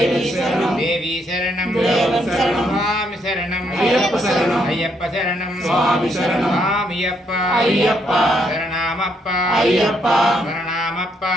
శరణం దేవి శరణం దేవన్ శరణం స్వామి శరణం అయ్యప్ప శరణం అయ్యప్ప శరణం స్వామి శరణం స్వామియప్ప అయ్యప్ప శరణమప్ప అయ్యప్ప శరణమప్ప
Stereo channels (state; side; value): normal; both; correlation 0.74